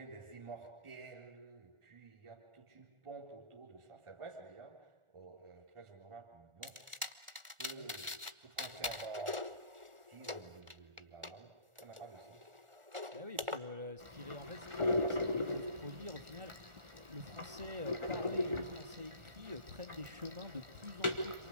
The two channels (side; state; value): left; late; 1.4 ms